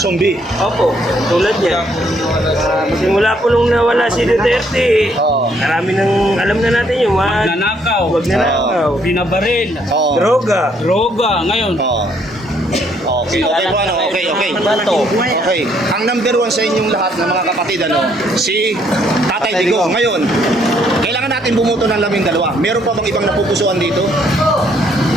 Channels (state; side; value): normal; both; correlation 0.68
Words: opo, tulad niya. Simula po nung nawala si Duterte, Oo. marami nang alam na natin yung Nanakaw, wag na nakaw, binabaril, Oo. droga, droga, ngayon. Oo. Okay po, okay. bato. Okay. Ang number 1 sa inyong lahat ng mga kapatid, si Tatay Digong. Ngayon, kailangan natin bumoto ng 12. Meron pa bang ibang napupusuan dito?